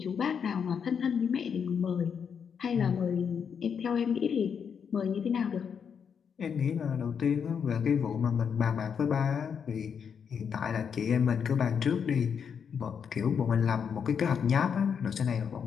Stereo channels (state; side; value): quieter; right; 7.0 dB